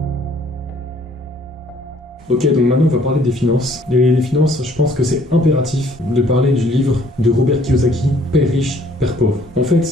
Ok, donc maintenant on va parler des finances. Les finances, je pense que c'est impératif de parler du livre de Robert Kiyosaki, Père riche, Père pauvre. En fait,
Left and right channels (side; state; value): both; normal; correlation 0.60